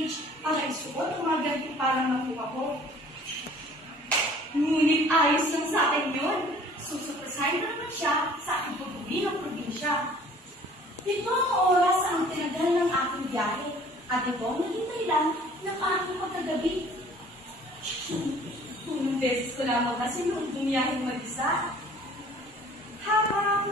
para isuot ang mga ganito parang nakuha ko. Ngunit ayos lang sa akin yun. Susupresahin na naman siya sa aking pag-uwi ng probinsya. Ito ang oras ang tinagal ng aking biyahe at ito ang naging dahilan ng aking pagkagabi. Unang beses ko lamang kasi noong bumiyaheng mag-isa.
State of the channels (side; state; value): both; normal; correlation 0.52